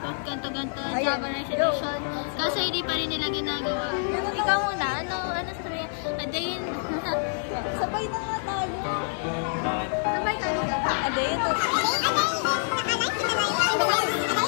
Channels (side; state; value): right; silent; digital silence